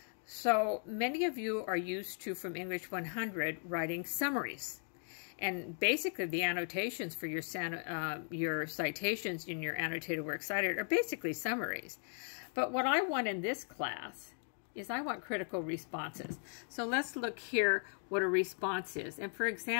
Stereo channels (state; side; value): silent; right; 53 dB below the other